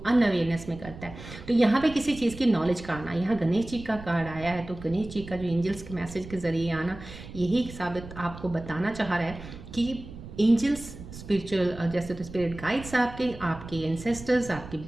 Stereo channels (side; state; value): right; noise; rumble, 14 dB below the sound